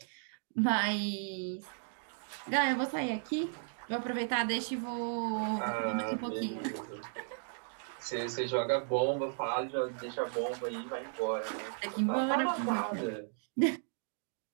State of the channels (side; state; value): left; silent; digital silence